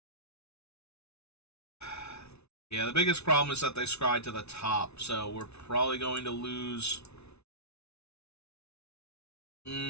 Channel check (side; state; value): right; late; 0.80 ms